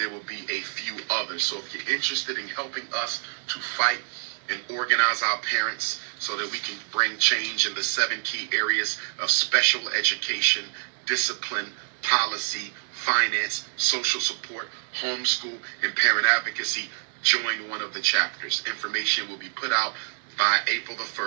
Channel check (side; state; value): left; silent; 60 dB below the other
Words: will be a few others. So if you're interested in helping us to fight and organize our parents so that we can bring change in the 7 key areas of special education, discipline, policy, finance, social support, homeschool, and parent advocacy, join one of the chapters. Information will be put out by April the